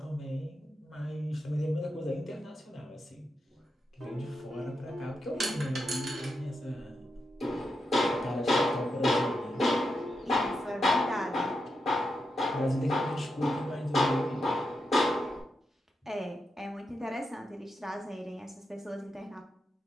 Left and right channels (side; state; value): both; normal; correlation 0.86